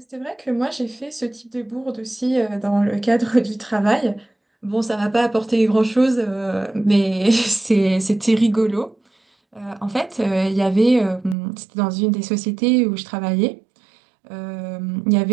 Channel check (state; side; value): drops out; left; at 11.4 s